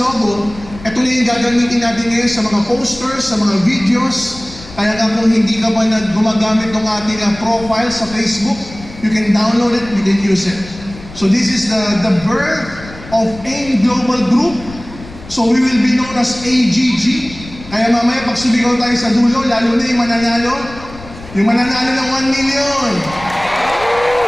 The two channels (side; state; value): left; noise; rumble, 16 dB below the sound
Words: ito na yung gagamitin natin ngayon sa mga posters, sa mga videos. Kaya nga kung hindi ka pa gumagamit ng ating profile sa Facebook, you can download it, you can use it. So this is the birth of AIM Global Group. So we will be known as AGG. Kaya mamaya pag sumigaw tayo sa dulo, lalo na yung mananalo ng 1 million.